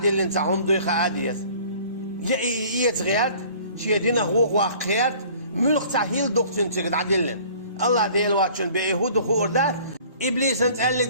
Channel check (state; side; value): inverted; both; correlation -0.51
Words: اللي نتاعهم دوي خاء ديز يت غيات شي دينا هو واقعيات ملق تحيل دوك تنتقع دعدي اللي الله ديل واتشن بيهود وخوردات إبليس نتقلق